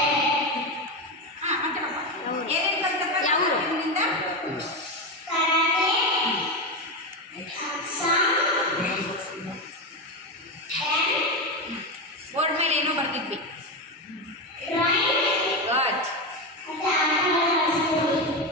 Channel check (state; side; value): normal; both; correlation 0.14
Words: ಏನೇನು ಕಲ್ತಪ್ಪ ಯಾವ ನಿಮ್ಮಿಂದ ಬೋರ್ಡ್ ಮೇಲೆ ಏನೋ ಬರ್ತಿದ್ವಿ ಗುಡ್